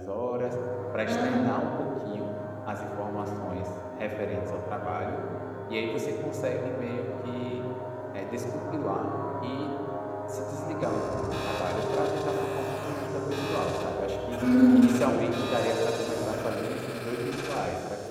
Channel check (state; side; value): identical; both; correlation 1.00